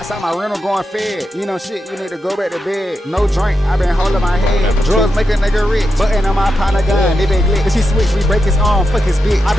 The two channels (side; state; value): both; normal; correlation 0.87